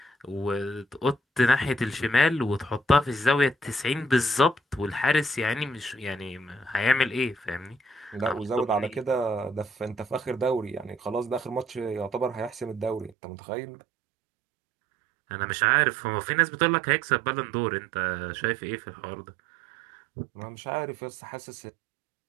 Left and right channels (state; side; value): drops out; left; at 13.1 s